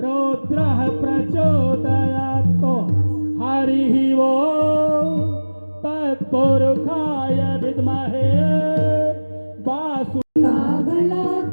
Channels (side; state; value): both; inverted; correlation -1.00